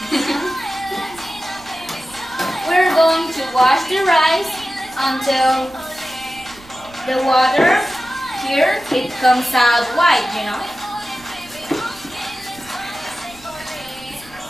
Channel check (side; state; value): right; noise; rumble, 23 dB below the sound